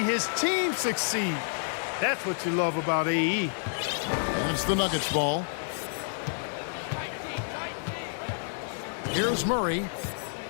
his team succeed. That's what you love about AE. And it's the Nuggets ball. Here's Murray.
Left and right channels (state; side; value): silent; right; digital silence